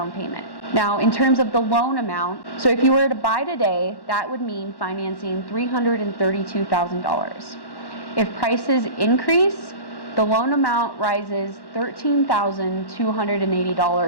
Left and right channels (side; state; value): right; late; 1.1 ms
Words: payment. Now, in terms of the loan amount, so if you were to buy today, that would mean financing $332,000. If prices increase, the loan amount rises